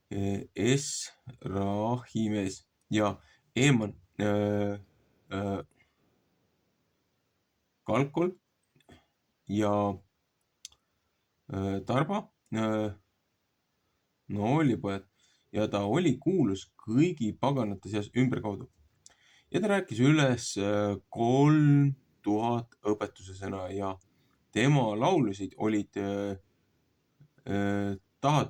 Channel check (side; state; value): both; identical; correlation 1.00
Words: Esrahimees ja Eeman, Kalkol ja Tarba, noolipojad, ja ta oli kuulus kõigi paganate seas ümberkaudu. Ja ta rääkis üles 3000 õpetuse sõna ja tema laulusid olid